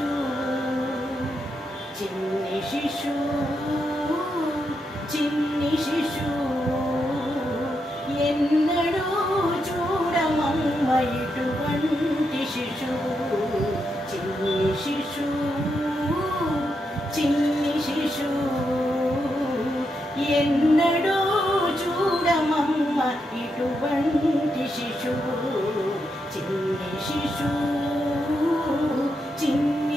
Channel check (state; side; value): normal; both; correlation 0.83